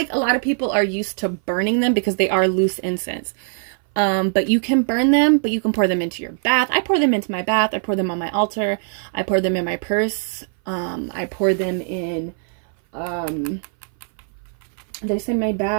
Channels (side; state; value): left; silent; 59 dB below the other